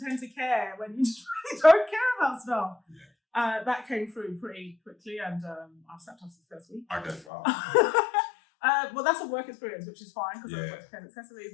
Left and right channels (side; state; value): right; drops out; at 7.2 s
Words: to care when you just really don't care about stuff. Yeah. That came through pretty quickly, and I've stepped off the first week. Okay, wow. Well, that's a work experience, which is fine because I worked with accessories,